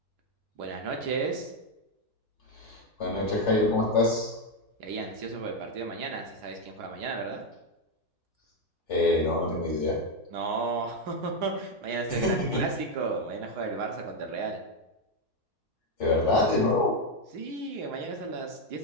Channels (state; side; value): normal; both; correlation 0.05